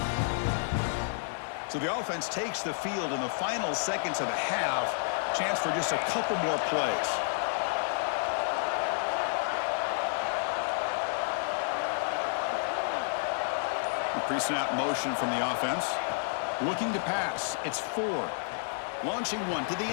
So the offense takes the field in the final seconds of the half. Chance for just a couple more plays. Pre-snap motion from the offense. Looking to pass. It's Ford. Launching one to the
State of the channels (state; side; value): silent; right; digital silence